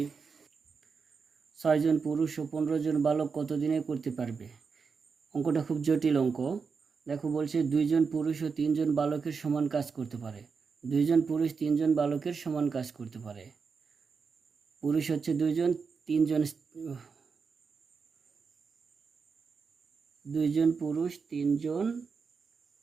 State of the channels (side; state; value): left; quieter; 5.4 dB